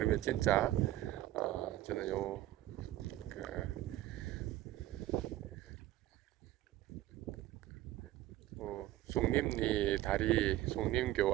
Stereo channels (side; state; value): left; quieter; 15.0 dB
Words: 진짜 저는 그 송림리 다리 송림교